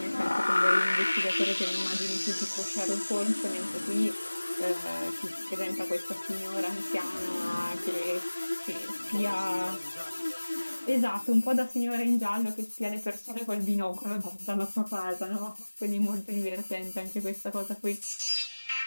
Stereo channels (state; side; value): inverted; both; correlation -1.00